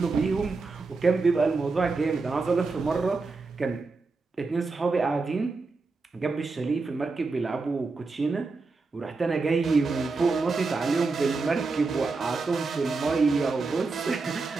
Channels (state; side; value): quieter; left; 4.0 dB